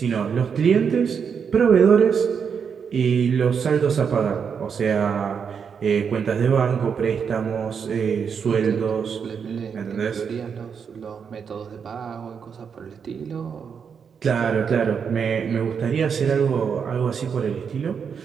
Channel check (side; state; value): left; quieter; 6.7 dB